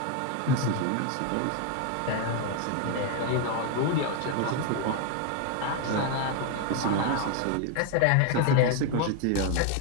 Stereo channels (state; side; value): different; both; correlation 0.01